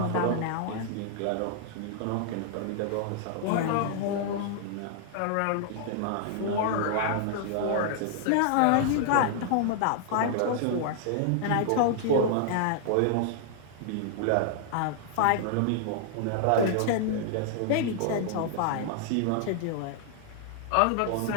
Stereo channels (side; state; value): both; different; correlation -0.01